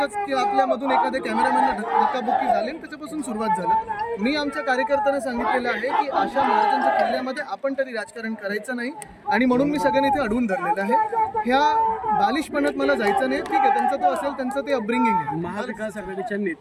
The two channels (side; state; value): both; identical; correlation 1.00